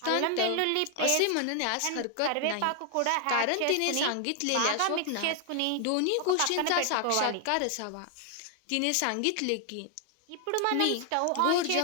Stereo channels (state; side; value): different; both; correlation 0.00